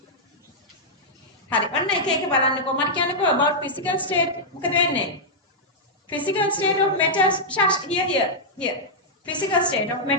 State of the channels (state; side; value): normal; both; correlation -0.07